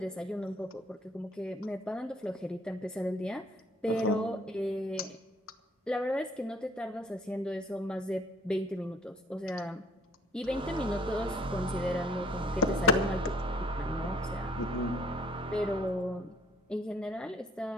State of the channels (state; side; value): normal; both; correlation 0.59